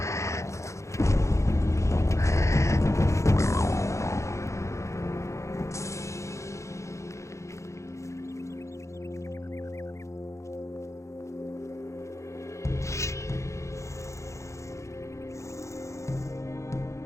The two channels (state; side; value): late; right; 0.14 ms